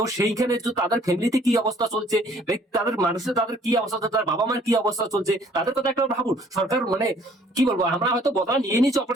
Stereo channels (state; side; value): normal; both; correlation 0.58